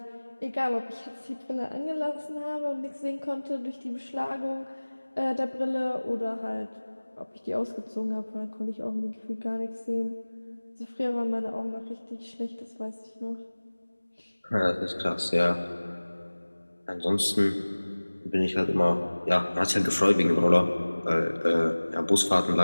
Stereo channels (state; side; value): inverted; both; correlation -1.00